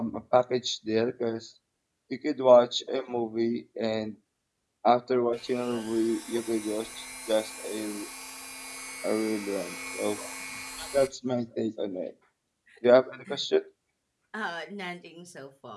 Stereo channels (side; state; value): both; identical; correlation 1.00